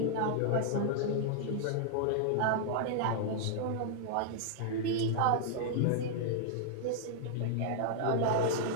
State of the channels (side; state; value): both; different; correlation -0.01